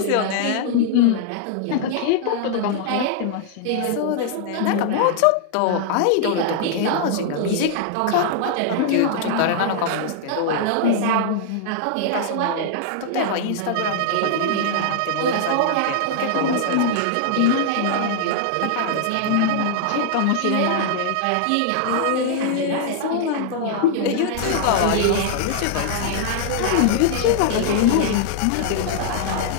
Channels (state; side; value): different; both; correlation -0.01